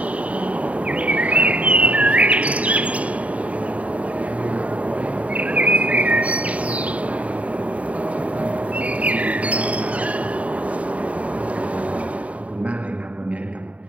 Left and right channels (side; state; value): left; late; 0.067 ms